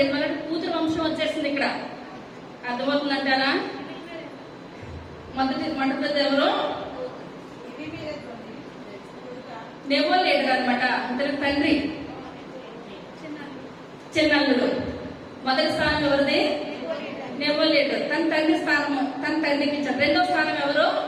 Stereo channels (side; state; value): both; identical; correlation 1.00